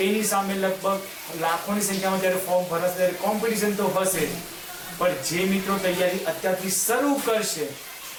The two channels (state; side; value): identical; both; correlation 1.00